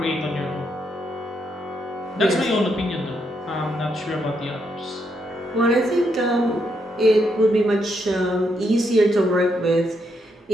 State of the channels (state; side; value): normal; both; correlation 0.78